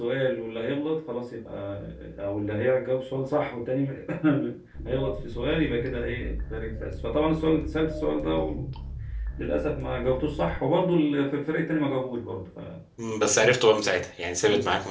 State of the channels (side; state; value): both; identical; correlation 1.00